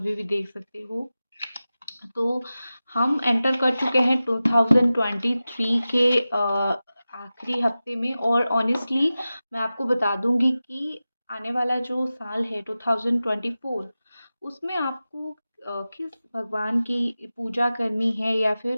भी देख सकते हो। तो हम एंटर कर चुके हैं 2023 के आखिरी हफ्ते में, और ऑनेस्टली मैं आपको बता दूंगी कि आने वाला जो साल है 2024, उसमें आपको किस भगवान की पूजा करनी है या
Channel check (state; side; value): inverted; both; correlation -0.95